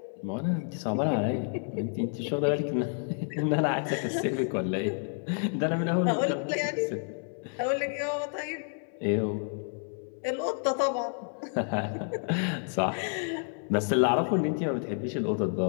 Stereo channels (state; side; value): silent; right; 56 dB below the other